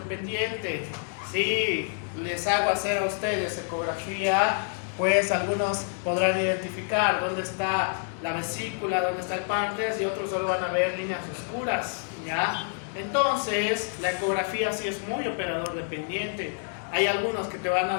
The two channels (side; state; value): right; silent; 60 dB below the other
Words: Si les hago hacer a ustedes ecografía, pues algunos podrán identificar dónde está la vesícula, dónde está el páncreas y otros solo van a ver líneas oscuras, ¿ya? Entonces, la ecografía sí es muy operador dependiente. Hay algunos que te van a